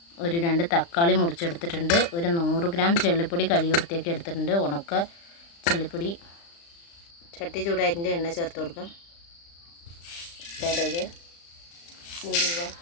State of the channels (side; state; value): right; late; 35 ms